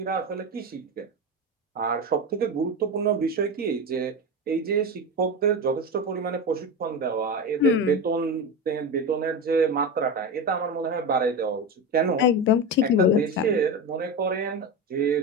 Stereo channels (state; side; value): normal; both; correlation 0.20